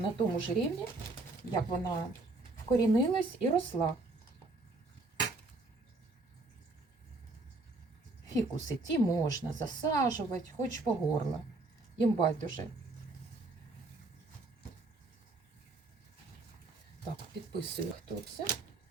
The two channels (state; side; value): quieter; left; 3.1 dB